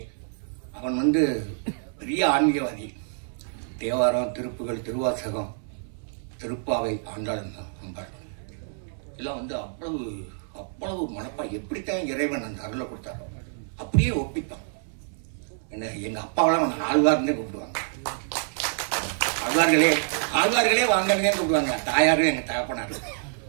அவன் வந்து பெரிய ஆன்மீகவாதி. தேவாரம், திருப்புகள், திருவாசகம், திருப்பாவை, ஆண்டாளன், அம்பாள் எல்லாம் வந்து அவ்வளவு அவ்வளவு மனப்பா எப்படித்தான் இறைவன் அந்த அருளை கொடுத்தாரோ அப்படியே ஒப்பிப்பான். என்ன எங்க அப்பாவெல்லாம் அவன் ஆழ்வார்னே கூப்பிடுவாங்க. ஆழ்வார்களே வாங்கன்னே கூப்பிடுவாங்க. தாயாரும் எங்க தகப்பனாரு.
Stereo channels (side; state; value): left; silent; 60 dB below the other